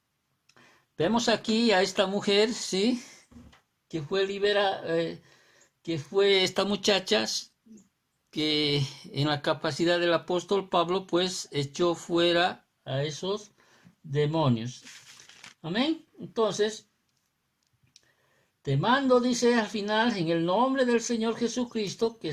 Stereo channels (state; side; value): identical; both; correlation 1.00